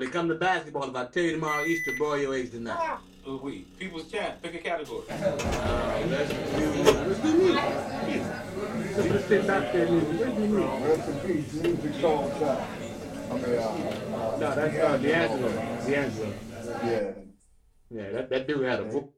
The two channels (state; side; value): identical; both; correlation 1.00